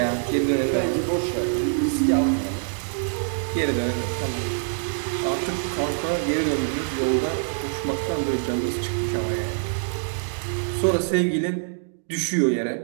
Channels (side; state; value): left; silent; digital silence